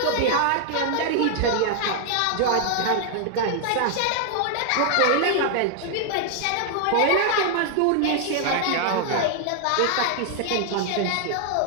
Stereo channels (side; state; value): both; different; correlation 0.00